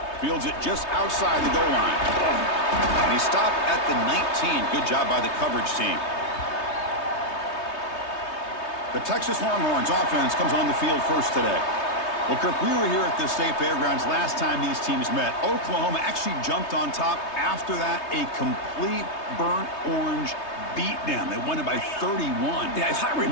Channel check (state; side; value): late; right; 3.2 ms